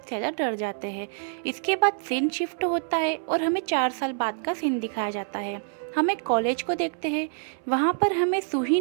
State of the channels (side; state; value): left; silent; 61 dB below the other